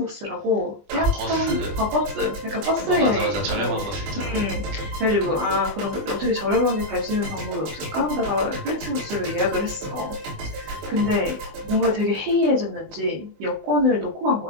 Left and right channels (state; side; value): late; left; 20 ms